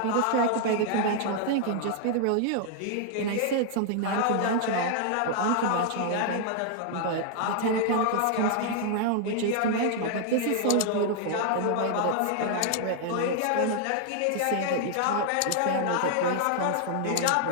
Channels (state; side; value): different; both; correlation 0.00